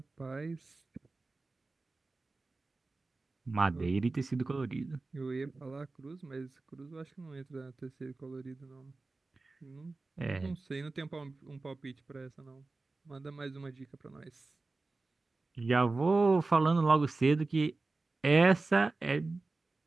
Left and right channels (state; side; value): quieter; left; 3.5 dB